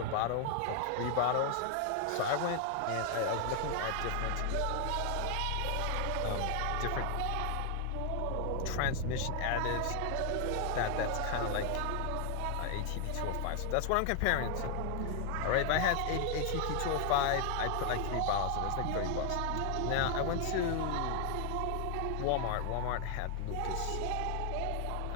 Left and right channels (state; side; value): different; both; correlation 0.00